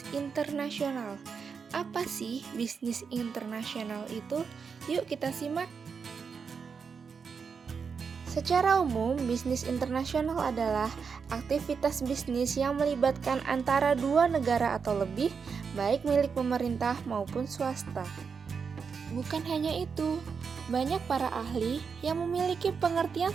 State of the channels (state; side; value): quieter; left; 5.8 dB